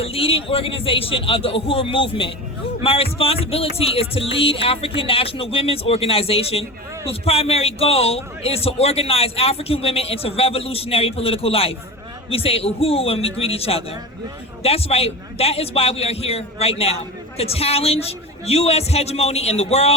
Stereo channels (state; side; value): normal; both; correlation 0.28